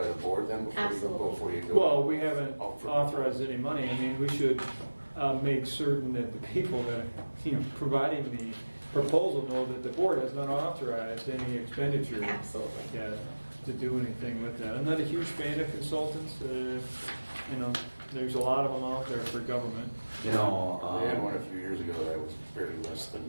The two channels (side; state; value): both; inverted; correlation -1.00